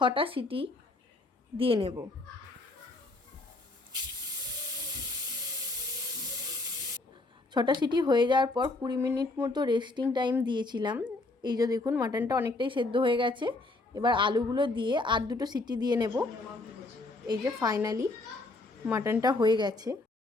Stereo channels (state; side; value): quieter; right; 3.1 dB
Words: সিটি দিয়ে নেব। 6টা সিটি হয়ে যাওয়ার পর 20 মিনিট মতো রেস্টিং টাইম দিয়েছিলাম। এই যে দেখুন মাটনটা অনেকটাই সেদ্ধ হয়ে গেছে। এবার আলুগুলো দিয়ে আর 2টো সিটি দিয়ে নেব। এই যে ফাইনালি মাটনটা হয়ে গেছে।